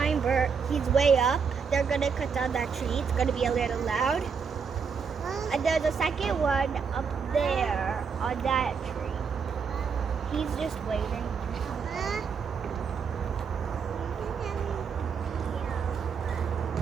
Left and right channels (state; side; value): quieter; left; 6.0 dB